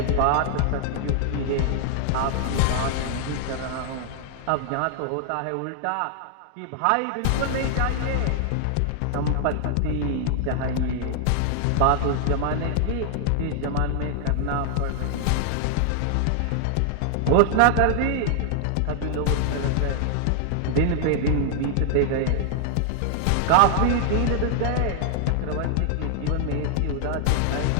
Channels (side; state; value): both; different; correlation 0.00